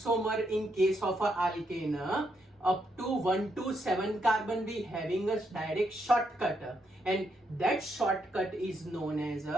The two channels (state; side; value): normal; both; correlation 0.78